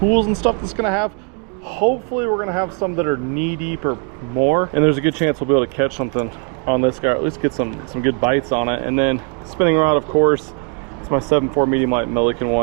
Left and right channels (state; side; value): quieter; left; 35.6 dB